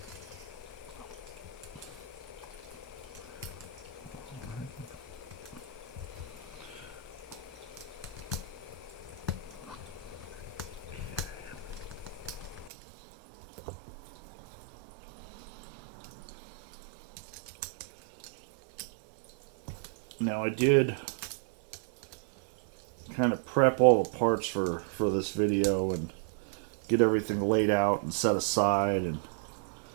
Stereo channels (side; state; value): left; drops out; at 12.7 s